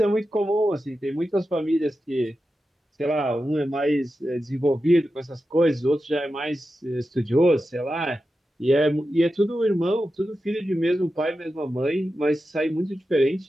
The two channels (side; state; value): both; normal; correlation 0.91